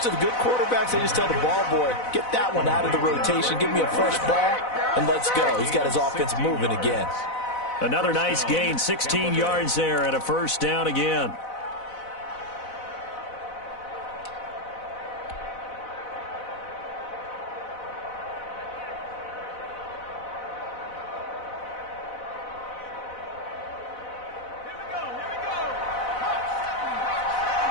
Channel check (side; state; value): right; late; 4.0 ms